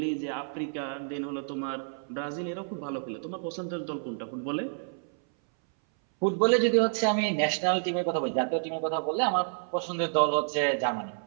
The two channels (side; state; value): left; silent; 58 dB below the other